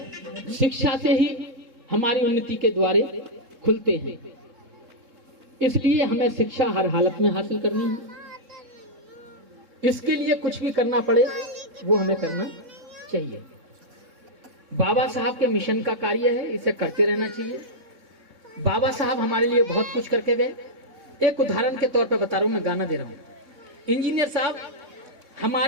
शिक्षा से ही हमारी उन्नति के द्वारे खुलते हैं। इसलिए हमें शिक्षा हर हालत में हासिल करनी है। इसके लिए कुछ भी करना पड़े वो हमें करना चाहिए। बाबा साहब के मिशन का कार्य है, इसे करते रहना चाहिए। बाबा साहब हमारे लिए बहुत कुछ करके गए। एक उदाहरण के तौर पे बता रहा हूं, मैं गाना दे रहा हूं। इंजीनियर साहब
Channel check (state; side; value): late; left; 3.7 ms